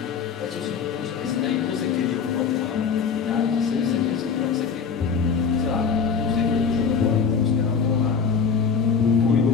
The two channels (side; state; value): right; quieter; 6.1 dB